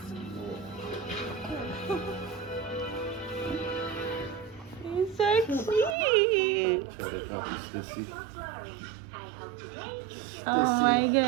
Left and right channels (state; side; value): drops out; left; at 6.0 s